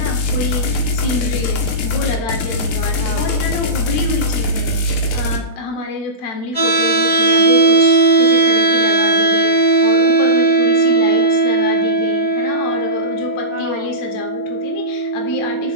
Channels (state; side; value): late; right; 6.6 ms